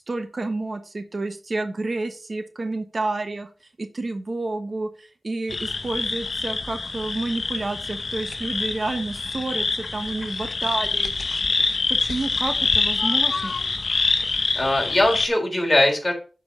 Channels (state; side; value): normal; both; correlation 0.94